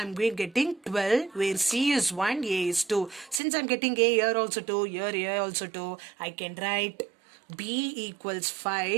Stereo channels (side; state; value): left; drops out; at 3.4 s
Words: getting 12, where C is 1, A is 2. Since I'm getting A here also 2, here also 2, I can write B equals